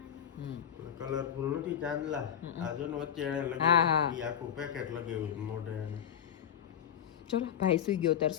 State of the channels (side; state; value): right; quieter; 9.1 dB